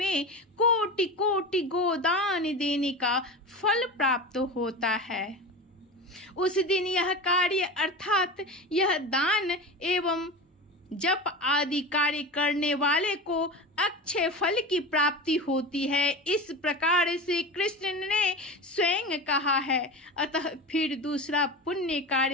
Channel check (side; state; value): both; normal; correlation 0.28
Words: कोटि कोटि गोदान देने का फल प्राप्त होता है। उस दिन यह कार्य अर्थात यह दान एवं जप आदि कार्य करने वाले को अक्षय फल की प्राप्ति होती है। इस प्रकार से कृष्ण ने स्वयं कहा है। अतः फिर दूसरा पुण्य